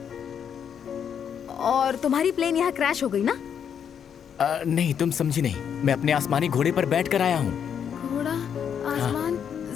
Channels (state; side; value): quieter; right; 8.0 dB